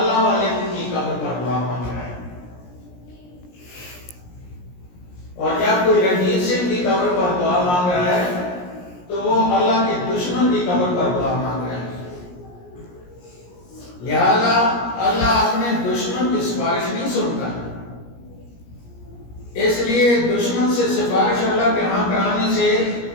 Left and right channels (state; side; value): late; right; 17 ms